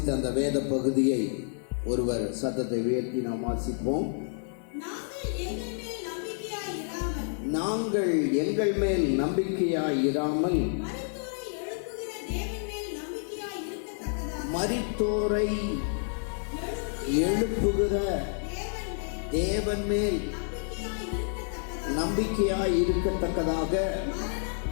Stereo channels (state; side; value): silent; right; 58 dB below the other